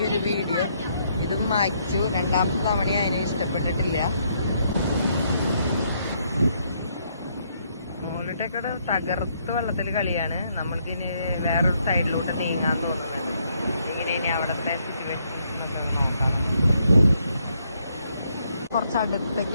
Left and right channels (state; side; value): inverted; both; correlation -0.73